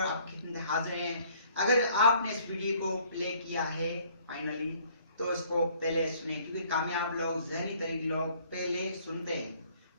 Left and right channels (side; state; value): both; inverted; correlation -0.59